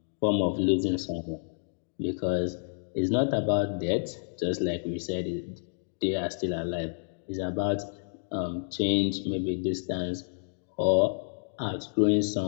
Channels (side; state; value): right; silent; digital silence